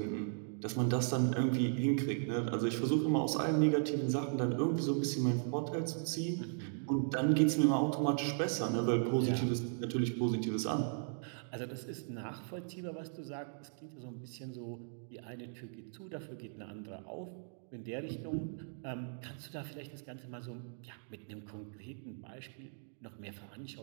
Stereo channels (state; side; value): silent; left; digital silence